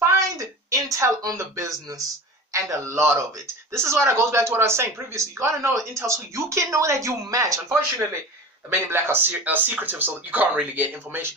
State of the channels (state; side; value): normal; both; correlation 0.34